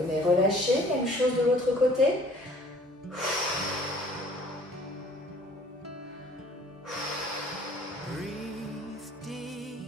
relâcher, même chose de l'autre côté.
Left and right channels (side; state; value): both; normal; correlation 0.53